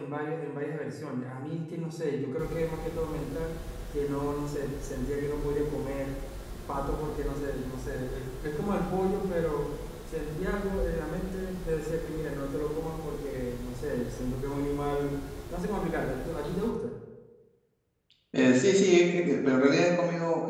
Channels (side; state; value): both; identical; correlation 1.00